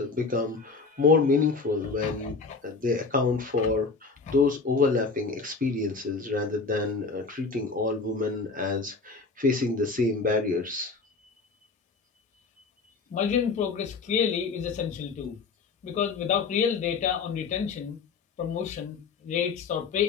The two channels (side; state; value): right; quieter; 4.4 dB